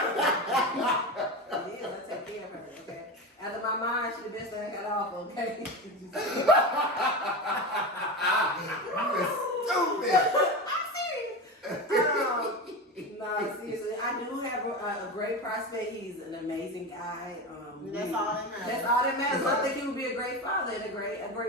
Yeah, I take care of her, okay? After my mind, she the best thing I got off, okay? You is stupid. No, seriously, I do have a great prospect. He's an amazing guy. That's all that matters. That's all that matters. I think he would be a great father and a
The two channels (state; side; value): normal; both; correlation 0.22